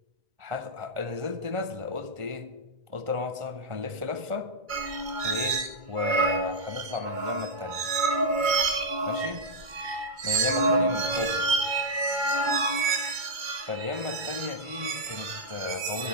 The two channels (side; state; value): left; late; 2.2 ms